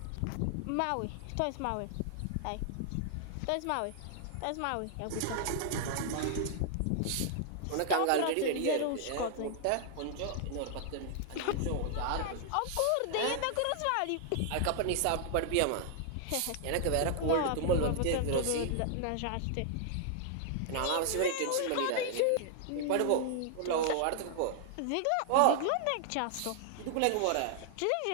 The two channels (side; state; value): both; different; correlation 0.00